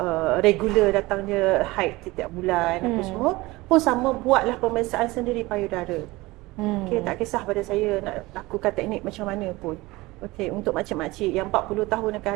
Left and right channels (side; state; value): left; quieter; 20.8 dB